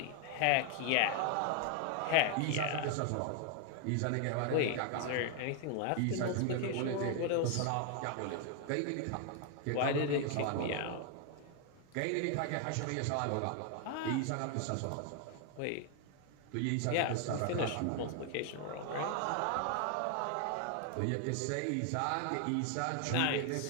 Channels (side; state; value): both; different; correlation 0.00